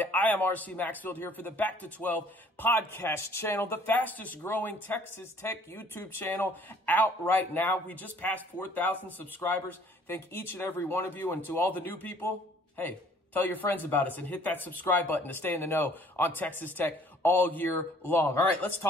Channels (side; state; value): both; normal; correlation 0.57